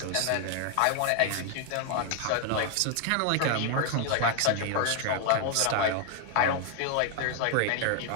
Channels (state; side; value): different; both; correlation 0.00